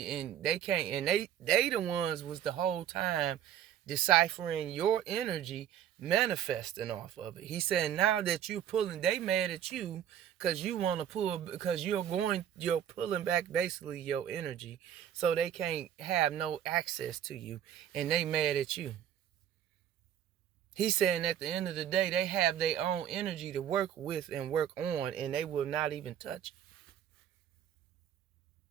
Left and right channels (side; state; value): left; quieter; 10.1 dB